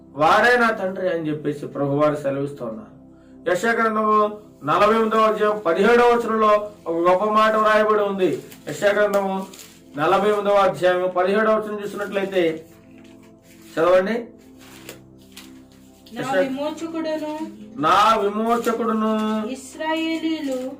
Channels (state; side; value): identical; both; correlation 1.00